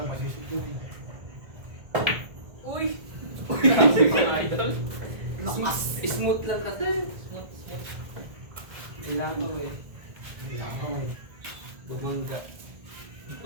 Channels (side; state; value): left; late; 1.6 ms